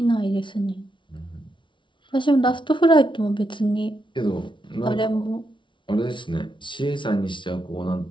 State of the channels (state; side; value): late; right; 0.24 ms